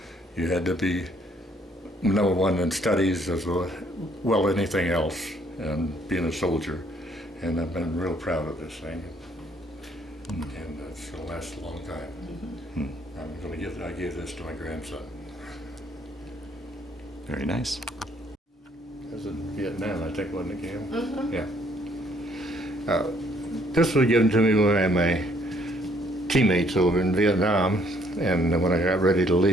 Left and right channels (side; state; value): both; normal; correlation 0.65